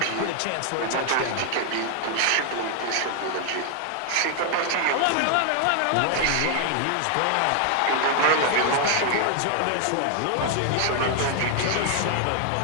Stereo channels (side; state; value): both; different; correlation 0.00